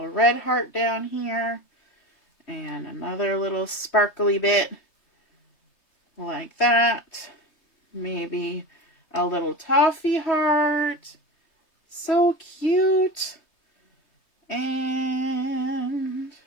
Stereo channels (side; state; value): right; late; 3.3 ms